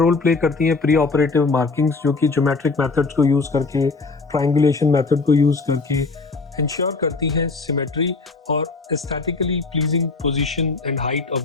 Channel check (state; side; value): quieter; right; 4.0 dB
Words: प्ले करती हैं प्री ऑपरेटिव मार्किंग्स, जो कि ज्योमेट्रिक मेथड्स को यूज़ करके, ट्रायंगुलेशन मेथड को यूज़ करके इंश्योर करती हैं सिमेट्री और aesthetically pleasing position and height of